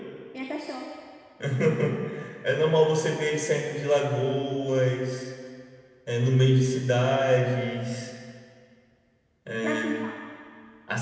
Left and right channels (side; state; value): both; identical; correlation 1.00